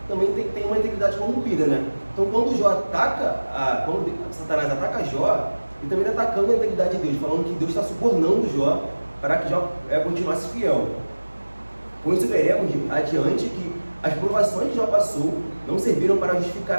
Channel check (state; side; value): inverted; both; correlation -1.00